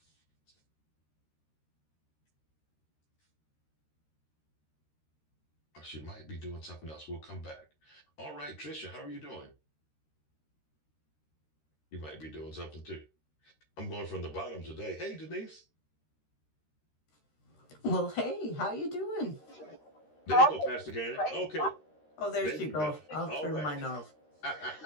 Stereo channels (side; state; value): right; late; 13 ms